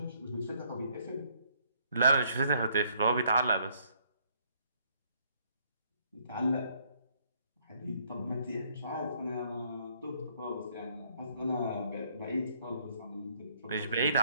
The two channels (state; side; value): inverted; both; correlation -0.67